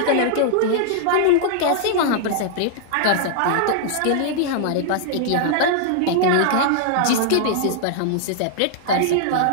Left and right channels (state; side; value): different; both; correlation -0.01